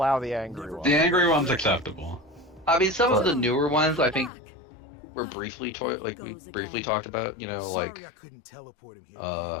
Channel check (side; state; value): right; drops out; at 4.3 s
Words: the angry one. The angry one's acceptable. I mean, some of the newer ones, I think, were briefly talked about. Sorry I couldn't teleport him here.